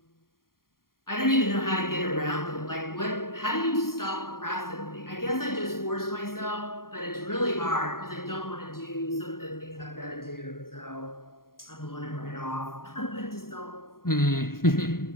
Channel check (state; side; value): late; right; 0.92 ms